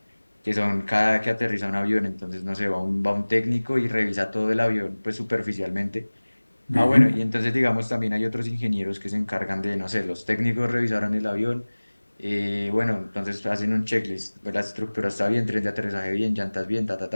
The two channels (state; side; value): inverted; both; correlation -1.00